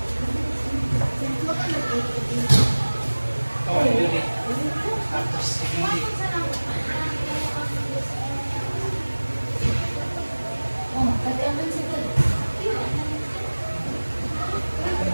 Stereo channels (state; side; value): inverted; both; correlation -1.00